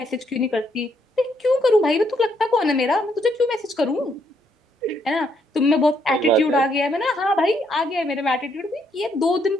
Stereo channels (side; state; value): both; normal; correlation 0.73